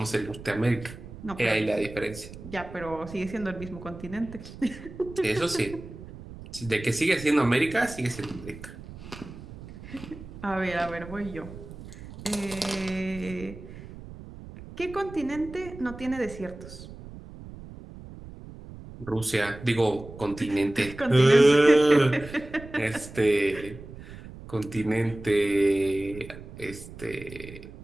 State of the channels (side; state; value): right; noise; rumble, 15 dB below the sound